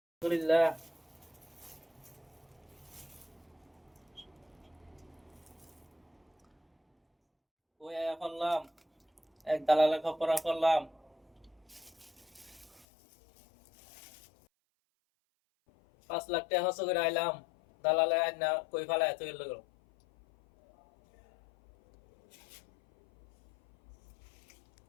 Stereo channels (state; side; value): drops out; right; at 12.9 s